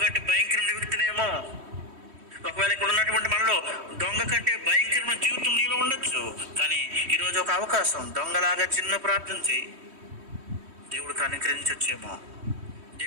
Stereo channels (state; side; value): late; left; 3.1 ms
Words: కంటే భయంకరమైన వ్యక్తినేమో. ఒకవేళ ఇక్కడ ఉన్నటువంటి మనలో దొంగ కంటే భయంకరమైన జీవితం నీలో ఉండొచ్చు. కానీ ఈరోజు ఒక అవకాశం. దొంగలాగా చిన్న ప్రార్థన చేయి, దేవుడు కనికరించొచ్చేమో.